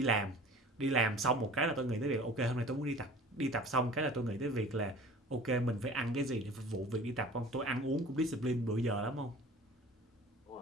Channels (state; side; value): normal; both; correlation 0.43